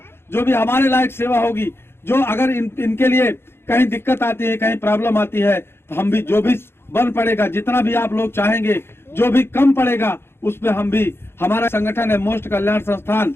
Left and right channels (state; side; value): late; right; 0.11 ms